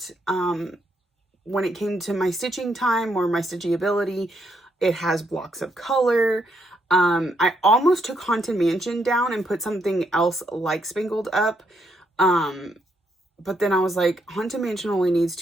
when it came to my stitching time or my stitching ability. It has blocks of color. I almost took Haunted Mansion down and put something else like Spangled up. But then I was like, Haunted Mansion only needs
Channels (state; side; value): normal; both; correlation 0.76